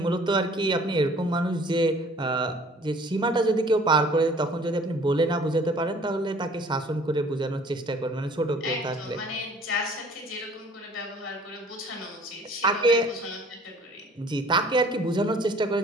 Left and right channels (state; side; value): normal; both; correlation 0.53